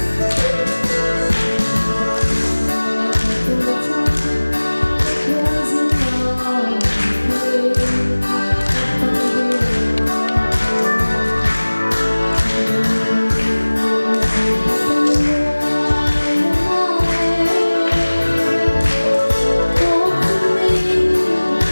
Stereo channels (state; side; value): inverted; both; correlation -1.00